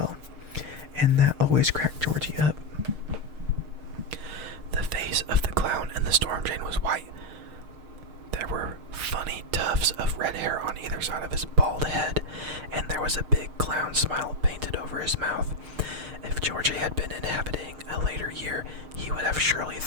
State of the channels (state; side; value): late; left; 6.5 ms